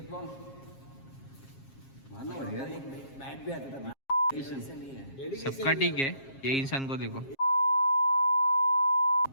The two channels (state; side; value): late; right; 7.4 ms